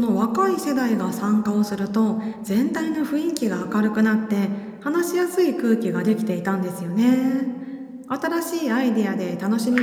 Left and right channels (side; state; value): both; identical; correlation 1.00